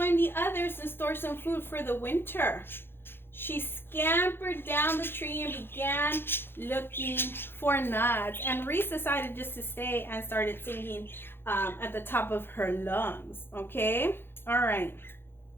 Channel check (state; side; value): late; right; 0.10 ms